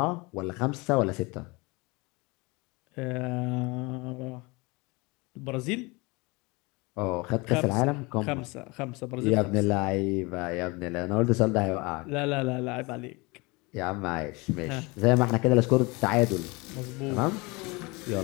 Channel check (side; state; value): right; quieter; 26.1 dB